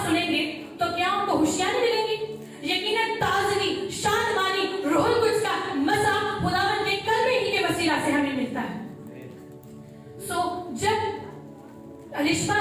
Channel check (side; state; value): both; identical; correlation 1.00